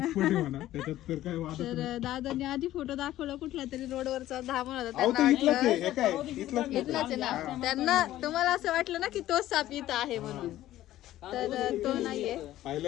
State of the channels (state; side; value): quieter; right; 14.2 dB